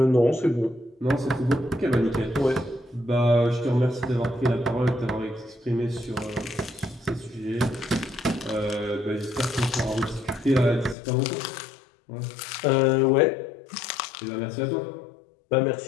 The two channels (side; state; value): right; drops out; at 11.0 s